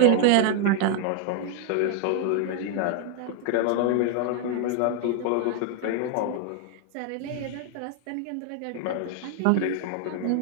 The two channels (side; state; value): both; different; correlation 0.00